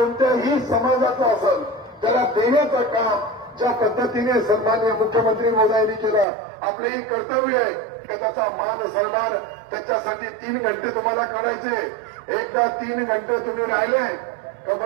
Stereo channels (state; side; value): drops out; left; at 6.2 s